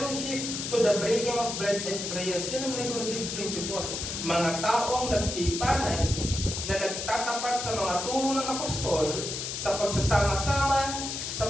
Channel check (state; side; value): noise; left; hiss, 4 dB below the sound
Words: to the breaking of bread and prayers. Yan ang regulative principle. Mga taong nagtipanan na nagtatapat sa mga turo ng apostol sa pagsasama-sama